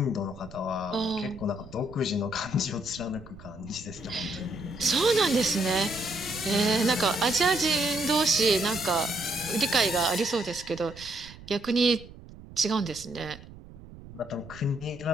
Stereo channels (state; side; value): noise; right; rumble, 18 dB below the sound